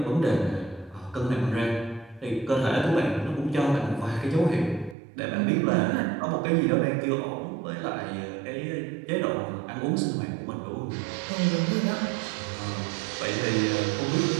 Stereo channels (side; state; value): left; drops out; at 5.0 s